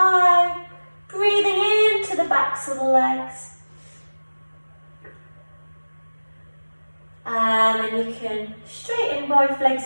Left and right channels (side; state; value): both; inverted; correlation -1.00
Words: breathing into the backs of the legs. And then you can straighten both